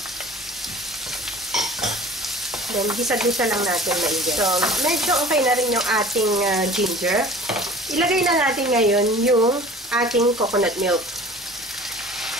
Then, gisa-gisa lang natin maigi. So, medyo okay na rin yung ating ginger. Ilagay na natin ngayon yung ating coconut milk.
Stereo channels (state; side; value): normal; both; correlation 0.44